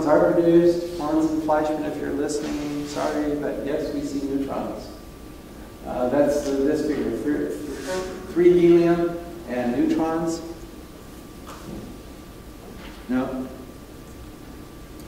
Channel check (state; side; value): identical; both; correlation 1.00